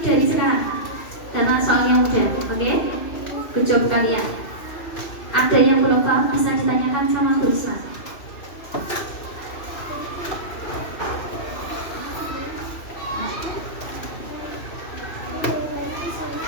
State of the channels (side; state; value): right; late; 2.7 ms